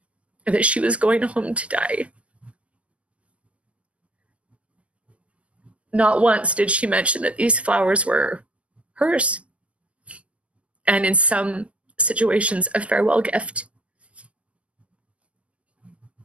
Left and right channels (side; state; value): left; late; 0.062 ms